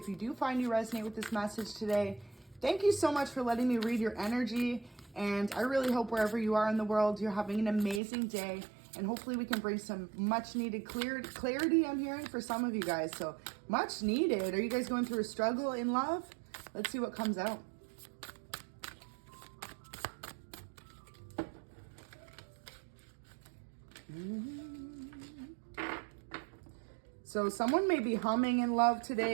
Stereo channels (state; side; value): drops out; left; at 8.0 s